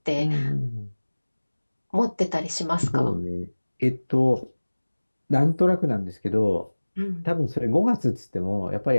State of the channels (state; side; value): inverted; both; correlation -1.00